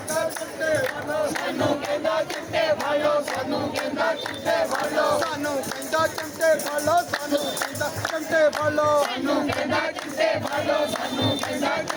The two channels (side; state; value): both; identical; correlation 1.00